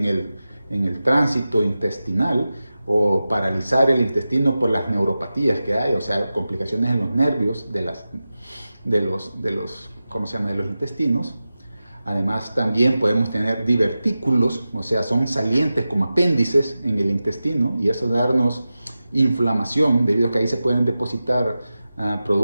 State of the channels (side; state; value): both; inverted; correlation -0.94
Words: el tránsito intestinal o paralizar el intestino por las neuropatías que hay, o sea, complicaciones en los nervios de los intestinos. Además, también podemos tener divertículos, o sea, son salientes como apéndices en el intestino, y eso darnos inflamación, debido a que ahí se pueden depositar